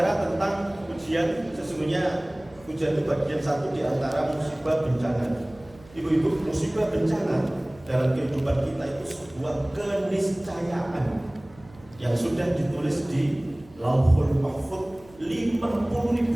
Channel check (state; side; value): noise; right; hum, 24 dB below the sound